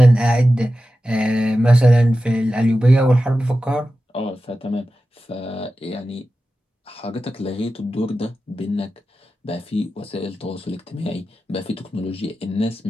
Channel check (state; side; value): normal; both; correlation 0.93